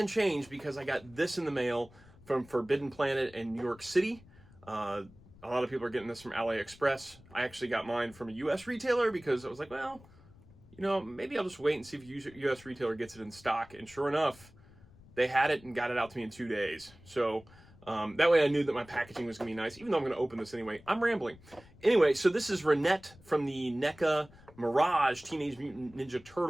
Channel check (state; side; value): noise; left; rumble, 24 dB below the sound